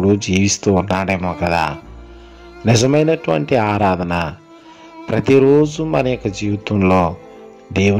జీవిస్తూ ఉన్నాడేమో కదా. నిజమైనటువంటి ఆరాధన ప్రతిరోజు మన యొక్క జీవితంలో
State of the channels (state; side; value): identical; both; correlation 1.00